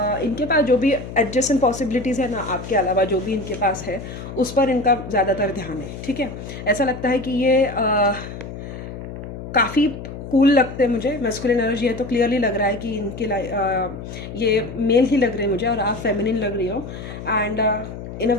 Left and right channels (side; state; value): left; noise; hum, 10 dB below the sound